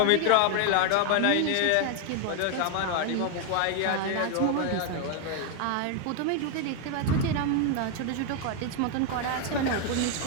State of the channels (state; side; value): different; both; correlation 0.01